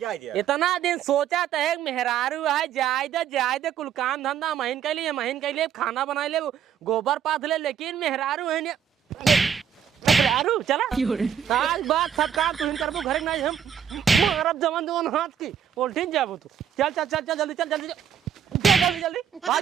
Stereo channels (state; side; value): quieter; left; 8.5 dB